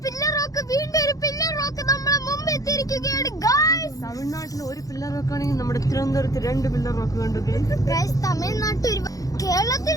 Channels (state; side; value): late; right; 0.17 ms